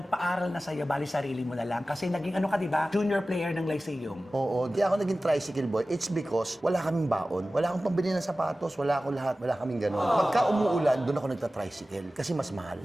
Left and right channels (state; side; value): normal; both; correlation 0.96